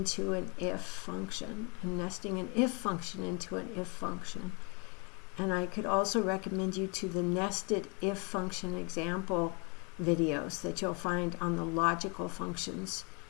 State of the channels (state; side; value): quieter; right; 33.1 dB